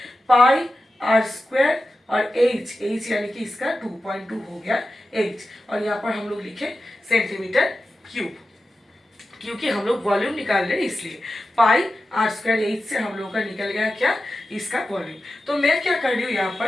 पाई आर स्क्वायर और एच यानी कि इसका 2.2 हो गया एच। और यहाँ पर हम लोग लिखे सेंटीमीटर क्यूब, क्योंकि हम लोग वॉल्यूम निकाल रहे हैं इसलिए। पाई आर स्क्वायर एच से हम लोग का निकल गया क्या, इसका वॉल्यूम। तो मैं क्या कर रही हूँ यहाँ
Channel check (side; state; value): both; normal; correlation 0.92